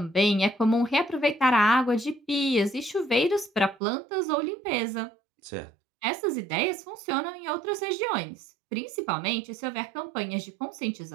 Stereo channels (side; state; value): left; drops out; at 3.8 s